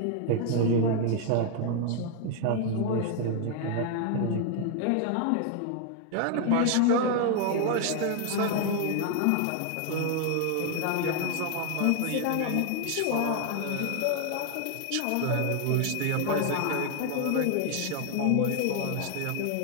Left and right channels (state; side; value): different; both; correlation 0.00